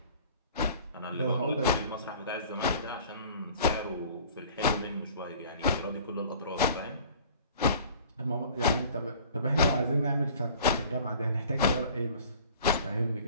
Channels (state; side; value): inverted; both; correlation -0.48